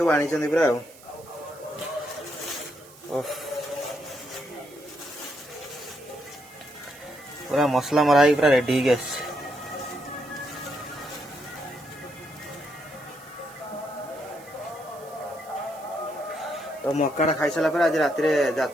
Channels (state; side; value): noise; right; hiss, 22 dB below the sound